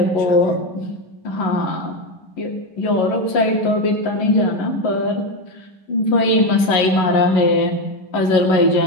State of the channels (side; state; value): right; late; 11 ms